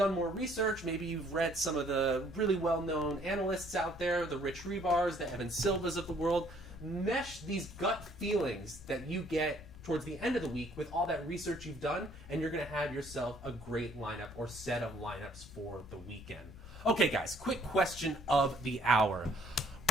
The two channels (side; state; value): left; noise; rumble, 17 dB below the sound